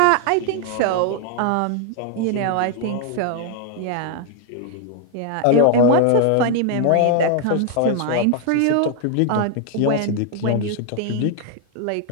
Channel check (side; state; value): both; different; correlation 0.00